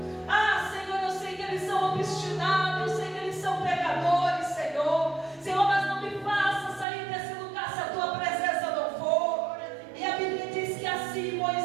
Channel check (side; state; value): left; drops out; at 6.9 s